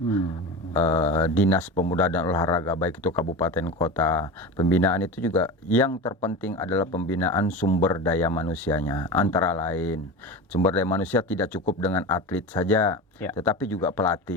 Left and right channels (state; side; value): normal; both; correlation 0.27